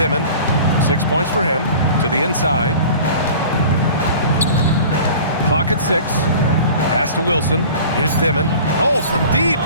6 points for him. To the inside. Clock at 6. Pass to Wilson. Here's Dimon. Oh, from deep.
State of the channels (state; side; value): inverted; both; correlation -0.42